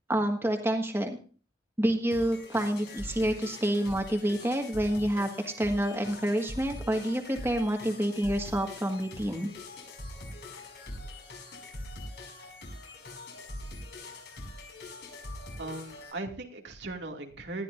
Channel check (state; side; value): normal; both; correlation 0.84